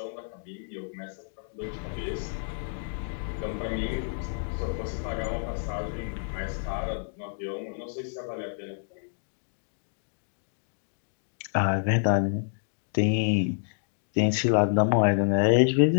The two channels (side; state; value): right; silent; digital silence